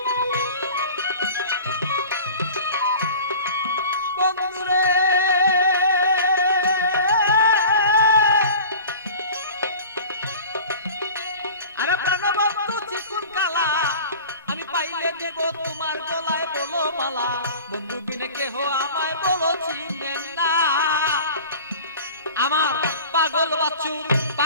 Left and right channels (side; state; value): both; inverted; correlation -0.41